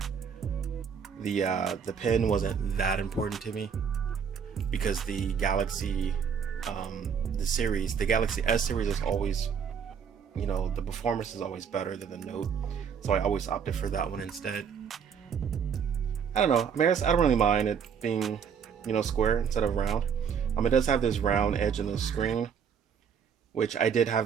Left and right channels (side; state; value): left; quieter; 7.0 dB